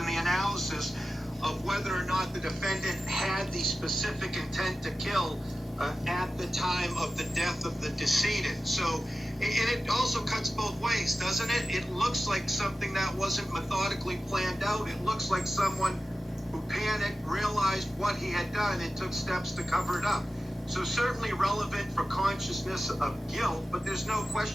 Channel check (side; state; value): both; normal; correlation 0.94